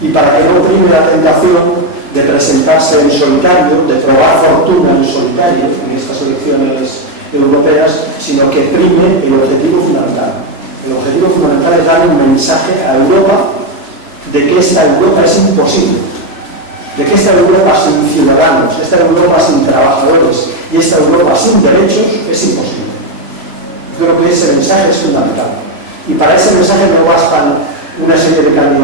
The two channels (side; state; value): left; late; 3.0 ms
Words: para que no prime la tentación de presentarse en solitario, de probar fortuna en solitario en estas elecciones europeas, sino que prime el objetivo fundamental. El objetivo fundamental es dar un mensaje a Europa de que esta Europa es imposible, de que esta Europa sin ciudadanos, esta Europa sin trabajadores y esta Europa sin derechos es imposible. Creo que ese mensaje es fundamental. Y para ese mensaje no bastan una serie de